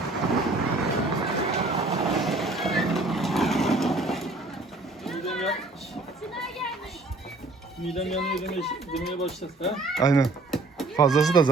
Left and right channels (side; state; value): left; quieter; 3.0 dB